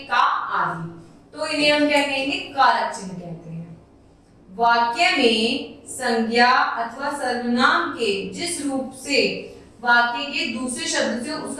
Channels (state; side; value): identical; both; correlation 1.00